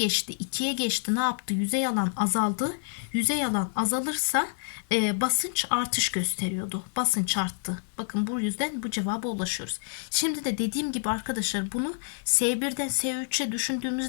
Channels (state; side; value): silent; right; 59 dB below the other